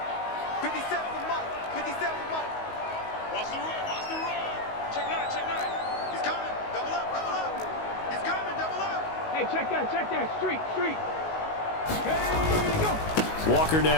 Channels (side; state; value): right; late; 19 ms